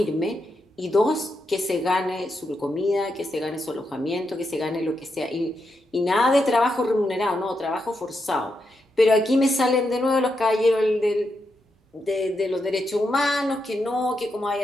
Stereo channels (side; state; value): both; normal; correlation 0.84